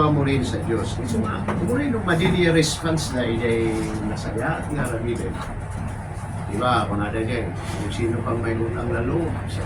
mo rin sa Diyos. So, mo rin yung madili response na ay nasaya at nga rabibin. Diba, kung nada dyan, kung sino pang may utang na loob sa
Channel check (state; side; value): identical; both; correlation 1.00